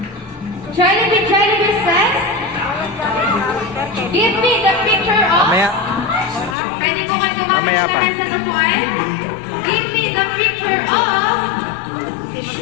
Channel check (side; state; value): right; drops out; at 6.6 s